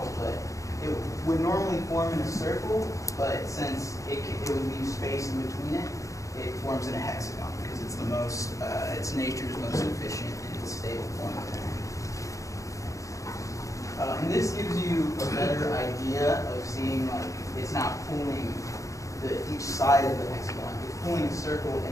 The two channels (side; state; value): right; late; 0.16 ms